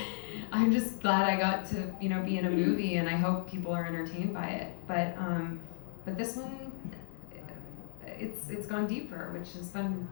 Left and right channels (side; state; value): right; silent; digital silence